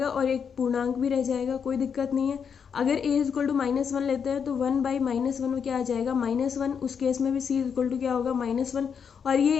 और एक पूर्णांक भी रह जाएगा, कोई दिक्कत नहीं है। अगर a is equal to minus 1 लेते हैं तो 1 बाई माइनस 1 क्या आ जाएगा -1, उस केस में भी c इज इक्वल टू क्या होगा -1, और ये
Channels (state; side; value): quieter; right; 6.9 dB